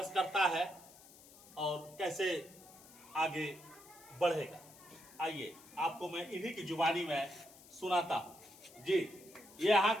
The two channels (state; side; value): noise; left; hiss, 21 dB below the sound